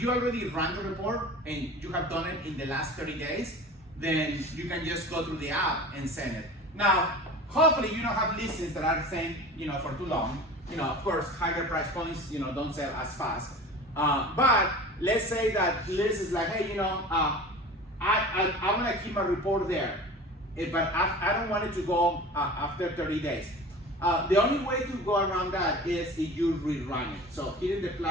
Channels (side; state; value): both; normal; correlation 0.37